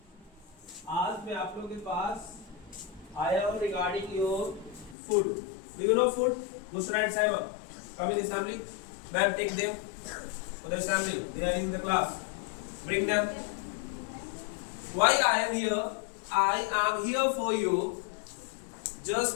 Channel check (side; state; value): right; drops out; at 5.0 s